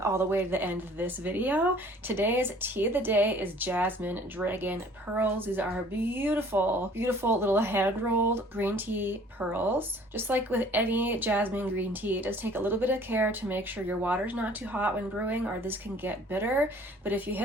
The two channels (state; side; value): normal; both; correlation 0.53